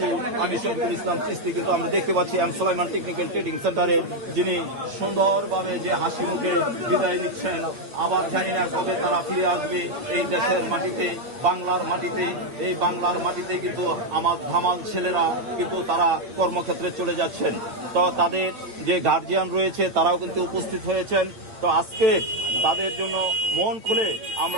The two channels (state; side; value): late; left; 8.6 ms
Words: আমি শফিকুল ইসলাম চিস্তি। কিন্তু আমরা দেখতে পাচ্ছি এম সুলাইমান টেকনিক্যাল ট্রেডিং সেন্টারের যিনি সুন্দরভাবে যে হাসি মুখে বিদায় নিচ্ছেন। আবার জানি না কবে তারা ফিরে আসবে এই দেশের মাটিতে, বাংলার মাটিতে। এই বাংলার মাটিতে কিন্তু আমার ধামাল ছেলেরা কিন্তু তারা কর্মক্ষেত্রে চলে যাচ্ছেন। তো তাদের যে গার্জিয়ান রয়েছে তারাও কিন্তু উপস্থিত হয়েছেন। তো আজকে তাদের জন্য মন খুলে